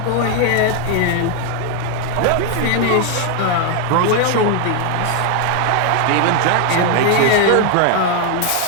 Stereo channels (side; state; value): both; different; correlation 0.00